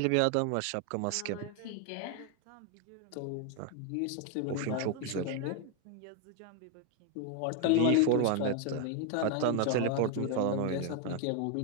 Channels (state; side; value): different; both; correlation 0.01